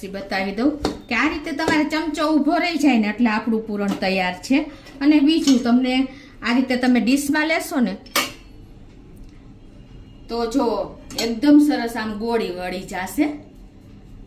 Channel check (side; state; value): both; identical; correlation 1.00